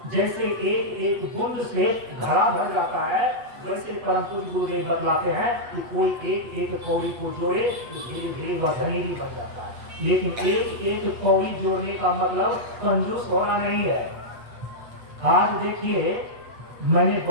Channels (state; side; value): late; left; 8.3 ms